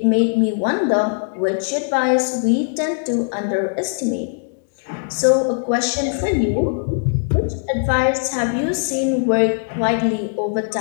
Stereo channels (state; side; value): silent; right; digital silence